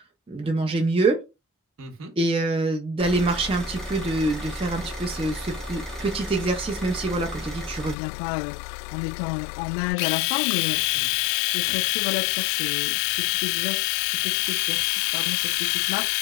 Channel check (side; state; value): right; drops out; at 8.0 s